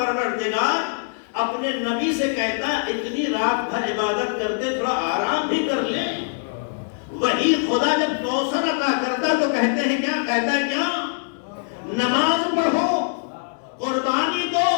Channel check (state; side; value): silent; right; digital silence